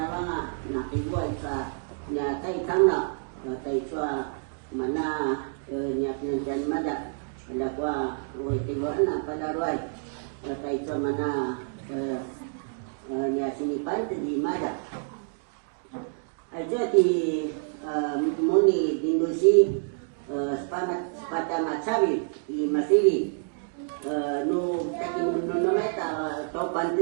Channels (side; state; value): left; silent; digital silence